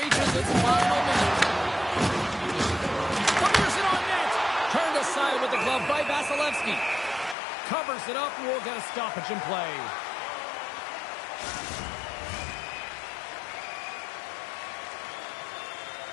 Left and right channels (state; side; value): drops out; right; at 7.4 s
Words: its final minute. Fires it on net. Turned aside with the glove by Vasilevsky. Covers it up and we'll get a stoppage in play.